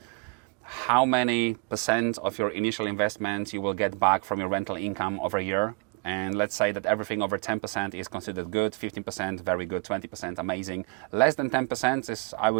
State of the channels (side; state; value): left; quieter; 33.0 dB